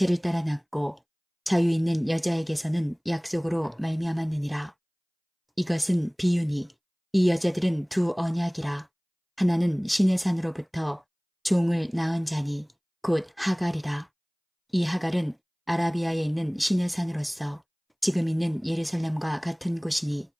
따라 낳고 자유 있는 여자에게서는 약속으로 말미암았느니라. 이것은 비유니 이 여자들은 두 언약이라. 하나는 신의 산으로부터 종을 낳은 자니 곧 하갈이라. 이 하갈은 아라비아에 있는 신의 산으로서 지금 있는 예루살렘과 같은 곳이니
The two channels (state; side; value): identical; both; correlation 1.00